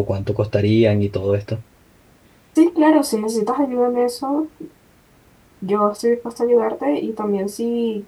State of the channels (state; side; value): identical; both; correlation 1.00